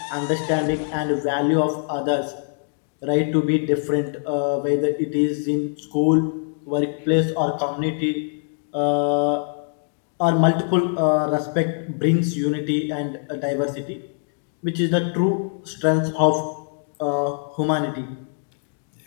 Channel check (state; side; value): silent; right; 63 dB below the other